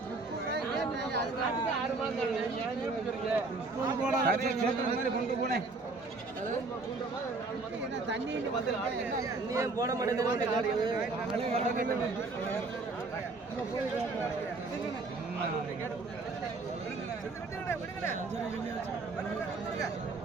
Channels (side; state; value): left; quieter; 3.6 dB